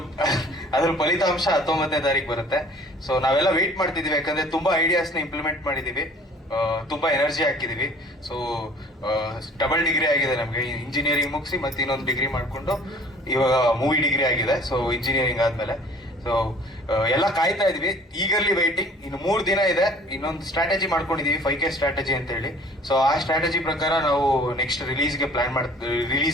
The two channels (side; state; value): both; normal; correlation 0.51